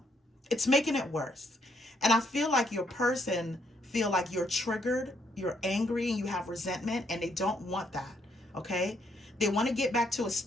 It's making it worse. And I feel like your person feel like you're triggered, you're angry, and you have resentment, and they don't want that, okay? They want to get back to a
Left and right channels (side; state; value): both; normal; correlation 0.72